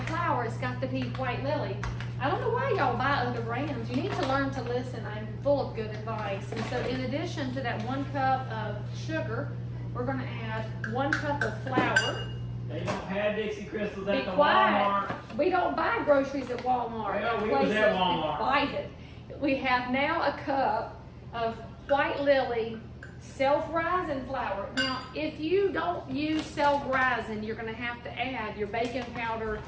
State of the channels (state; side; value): identical; both; correlation 1.00